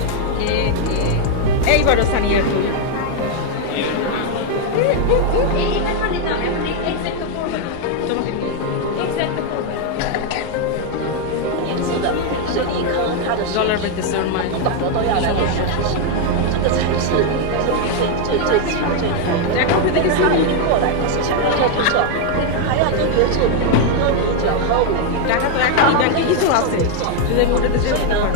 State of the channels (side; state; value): both; different; correlation 0.01